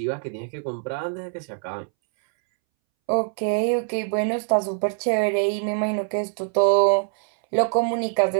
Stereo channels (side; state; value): left; silent; 63 dB below the other